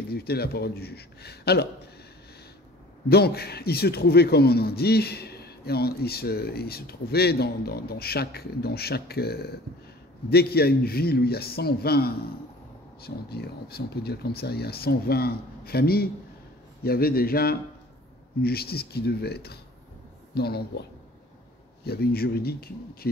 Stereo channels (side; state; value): both; normal; correlation 0.47